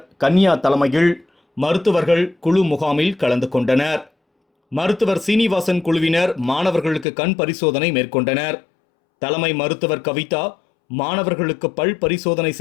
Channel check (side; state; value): right; drops out; at 7.1 s